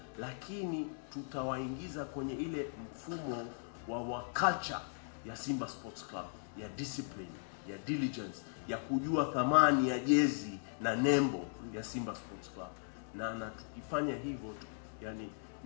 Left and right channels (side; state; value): right; silent; digital silence